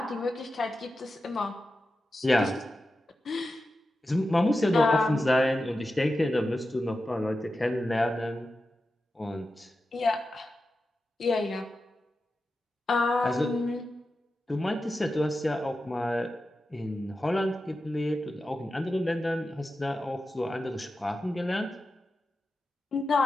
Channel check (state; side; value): normal; both; correlation 0.91